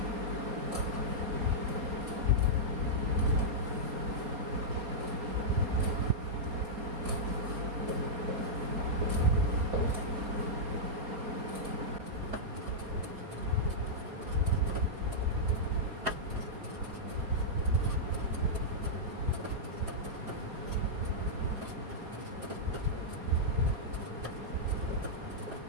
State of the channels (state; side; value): late; left; 4.2 ms